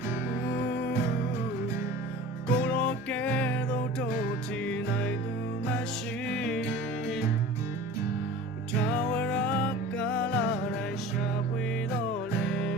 ကိုတော့ကဲတော့တို့ချီနိုင်သူမရှိထာဝရကာလတိုင်းရှာဖွေတော့လေ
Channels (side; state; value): both; normal; correlation 0.39